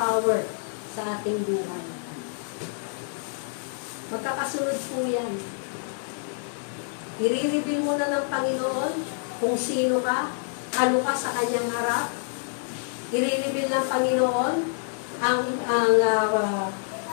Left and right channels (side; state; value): right; silent; digital silence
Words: sa ating buhay. Magkakasunod po yan. I-reveal mo na ng Panginoon kung sino ka, ano ka sa kanyang harap. I-reveal ng Panginoon ang